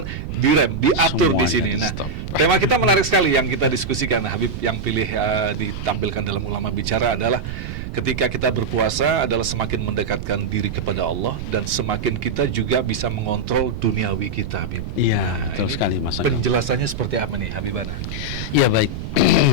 direm, diatur di Semuanya sini. Nah, di-stop. tema kita menarik sekali yang kita diskusikan, Habib, yang pilih ditampilkan dalam Ulama Bicara adalah ketika kita berpuasa adalah semakin mendekatkan diri kepada Allah dan semakin kita juga bisa mengontrol duniawi kita, Habib. Iya, betul ini sekali, Mas Agung. penjelasannya seperti apa nih, Habibana? Ya, baik.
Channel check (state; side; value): noise; right; rumble, 7 dB below the sound